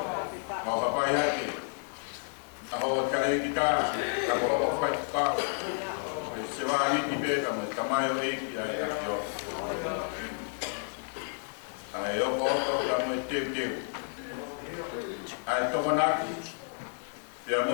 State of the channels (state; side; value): silent; right; 57 dB below the other